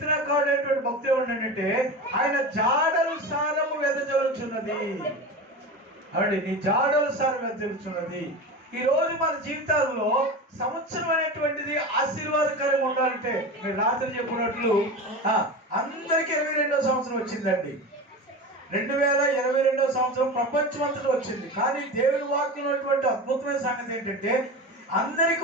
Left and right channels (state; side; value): normal; both; correlation 0.27